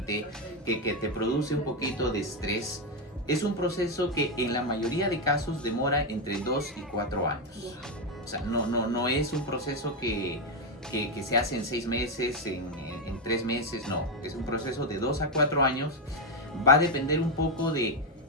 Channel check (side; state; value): both; normal; correlation 0.06